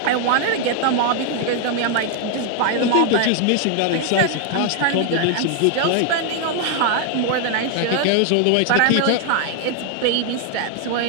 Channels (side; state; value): both; different; correlation 0.00